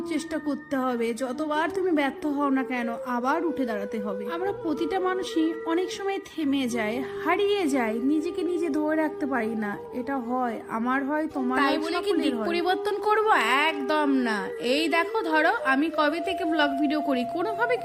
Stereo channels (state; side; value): identical; both; correlation 1.00